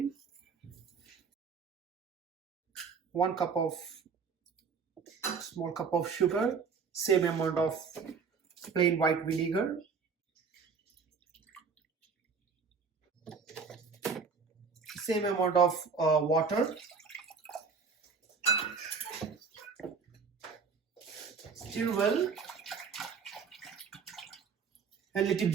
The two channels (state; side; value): quieter; left; 5.4 dB